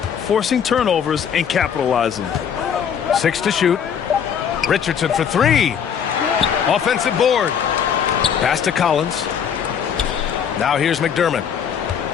forcing turnovers and capitalizing. 6 to shoot. Richardson for 3. Offensive board. Pass to Collins. Now here's McDermott.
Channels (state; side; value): quieter; right; 7.9 dB